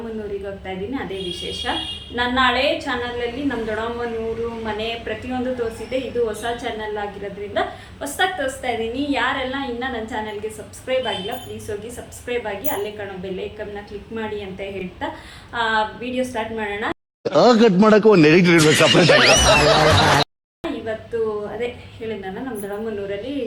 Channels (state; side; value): identical; both; correlation 1.00